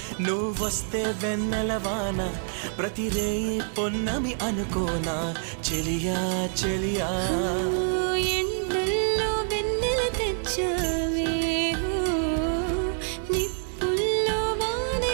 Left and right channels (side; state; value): left; silent; 60 dB below the other